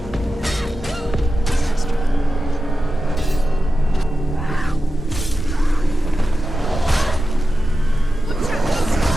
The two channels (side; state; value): both; normal; correlation 0.92